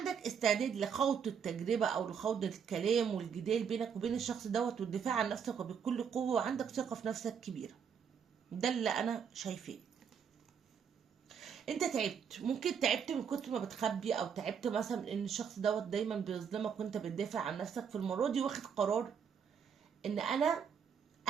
استعداد لخوض التجربة او لخوض الكلام والجدال بينك وبين الشخص دوت والدفاع عن نفسك وبكل قوة، وعندك ثقة في نفسك كبيرة. ده اللي انا شايفاه. انت تعبت، ممكن تعبت من كتر ما بتخبي، او تعبت مثلا ان الشخص دوت دايما بيظلمك وانت بتدافع عن نفسك. في المرة دي واخد قرار ان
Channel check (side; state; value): left; quieter; 7.2 dB